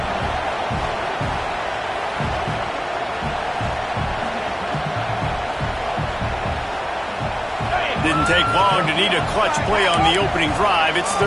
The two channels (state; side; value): identical; both; correlation 1.00